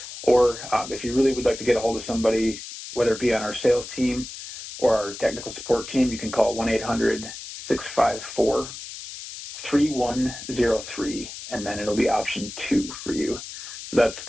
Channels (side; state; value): left; noise; hiss, 11 dB below the sound